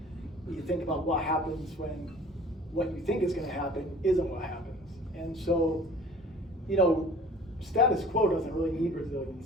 You think about what happens when what you think is going to happen isn't what happens. And so, status quo doesn't really need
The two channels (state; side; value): normal; both; correlation 0.47